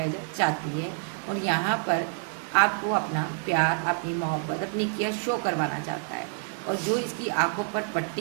चाहती है, और यहाँ पर आपको अपना प्यार, अपनी मोहब्बत, अपनी केयर शो करवाना चाहता है। और जो इसकी आंखों पर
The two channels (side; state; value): left; silent; 59 dB below the other